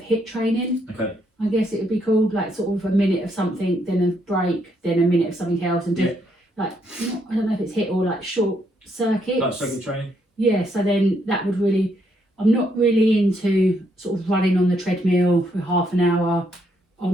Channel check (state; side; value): normal; both; correlation 0.74